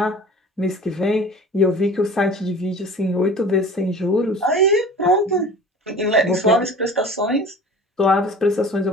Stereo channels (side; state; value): both; normal; correlation 0.41